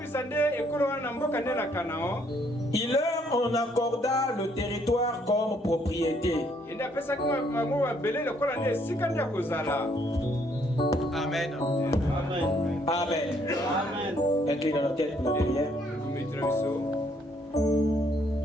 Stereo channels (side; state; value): both; normal; correlation 0.68